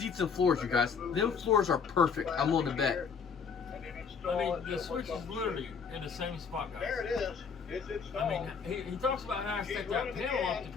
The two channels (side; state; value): right; quieter; 6.0 dB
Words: and floors, you guys. Them floors are perfect. I'm willing to bet. I mean, the switch is literally in the same spot, guys. There it is. It's installed. I mean, he talks about how to take that panel off to